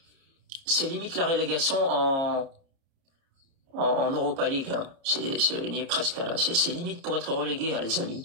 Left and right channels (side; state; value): left; late; 30 ms